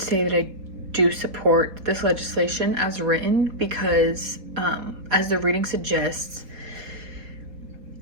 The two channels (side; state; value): left; late; 4.0 ms